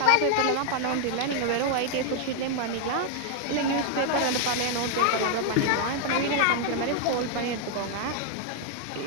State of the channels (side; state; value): both; different; correlation 0.00